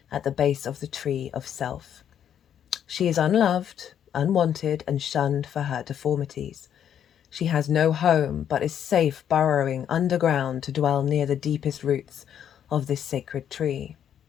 at the base of the tree of self. She is unloved, unwanted, and shunned for her deformities. She has no home, but is safe burrowing underground to dwell near the deepest roots of this sacred tree.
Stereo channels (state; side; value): quieter; right; 9.4 dB